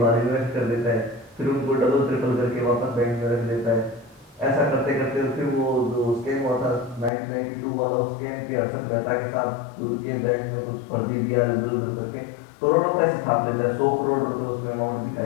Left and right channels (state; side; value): drops out; right; at 7.1 s